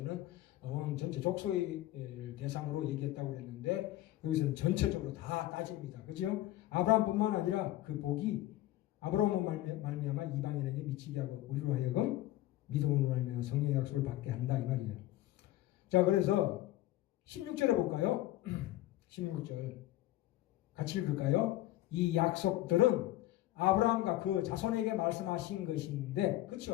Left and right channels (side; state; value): right; quieter; 15.4 dB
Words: 온 전체 족속의 대상으로 얘기했다고 했는데 여기서는 전체적으로 다 따집니다. 그죠? 아브라함뿐만 아니라 그 복이 아브라함으로 말미암아 이방인에게 미치게 하고 우리로 하여금 믿음으로 말미암아 성령의 약속을 받게 한다 이 말이에요. 자, 그래서 16절에 볼까요? 16절 같이 읽을까요? 이 약속들은 아브라함과 그 자손에게 말씀하신 것인데,